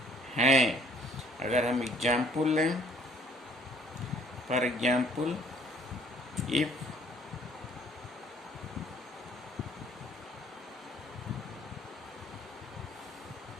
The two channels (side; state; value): both; normal; correlation 0.58